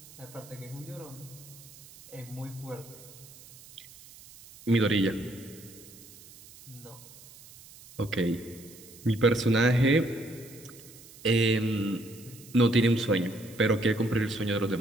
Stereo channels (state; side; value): noise; right; hiss, 20 dB below the sound